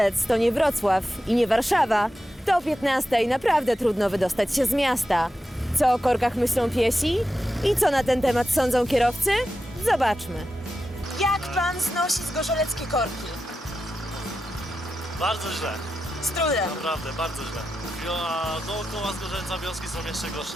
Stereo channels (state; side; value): normal; both; correlation 0.90